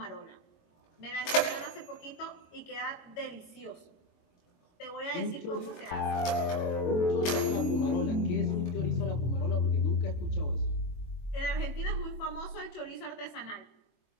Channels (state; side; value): late; right; 23 ms